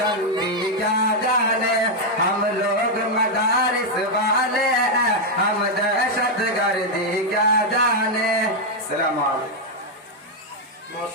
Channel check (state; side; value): normal; both; correlation 0.00